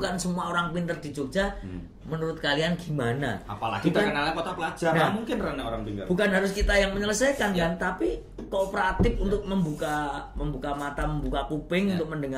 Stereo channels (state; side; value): identical; both; correlation 1.00